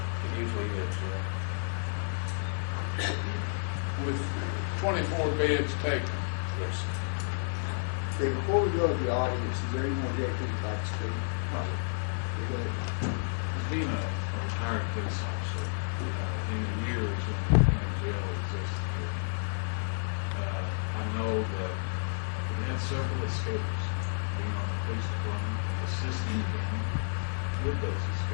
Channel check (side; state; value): right; silent; digital silence